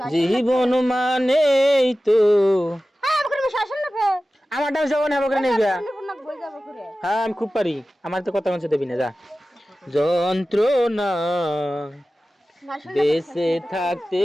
জীবন মানেই তো আমারটাও জীবন হবে নিয়ে গিয়া। হ্যাঁ আমি খুব পারি, আমার তো কথা মানছে দেবি না যা। যন্ত্রণা বেঁচে থাকতে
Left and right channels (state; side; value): normal; both; correlation 0.95